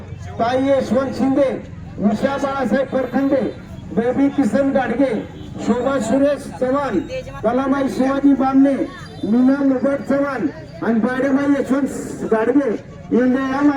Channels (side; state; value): both; identical; correlation 1.00